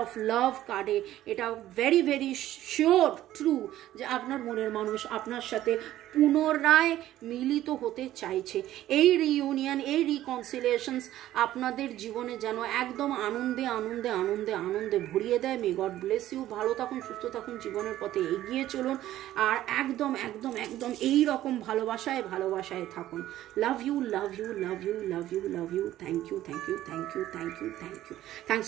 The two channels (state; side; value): quieter; left; 13.7 dB